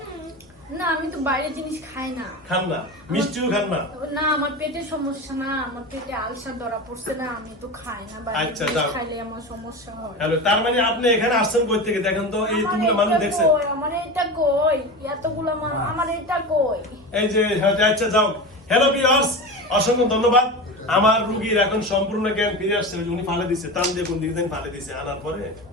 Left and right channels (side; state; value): both; normal; correlation 0.26